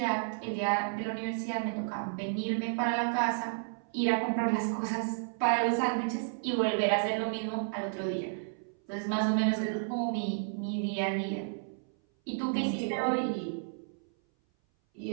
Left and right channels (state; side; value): silent; left; 56 dB below the other